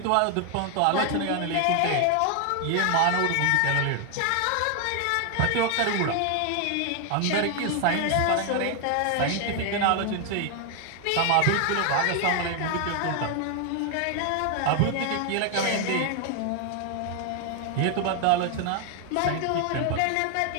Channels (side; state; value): both; different; correlation 0.00